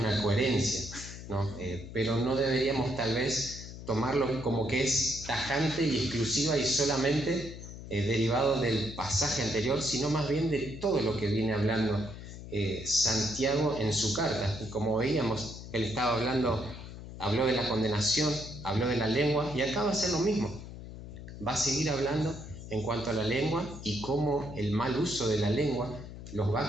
coherencia, ¿no? Pero no deberíamos tal vez tomarlo como que es tajante y exclusiva y solamente derivado del pasaje anterior, sino más bien de todo lo que viene hablando Santiago en su carta. Y como veíamos, él estaba habló de la condenación, habló de la lengua, y acá va a ser lo mismo. Va a seguir hablando en cuanto a la lengua y cómo el mal uso de la lengua los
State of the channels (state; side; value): noise; left; hum, 12 dB below the sound